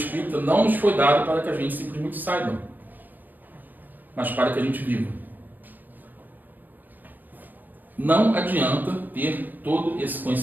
espírita não nos foi dado para que a gente simplesmente saiba, mas para que a gente viva. Não adianta ter todo esse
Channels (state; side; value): late; left; 0.089 ms